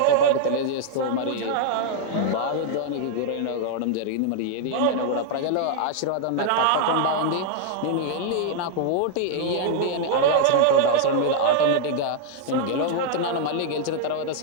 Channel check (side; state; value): both; different; correlation -0.01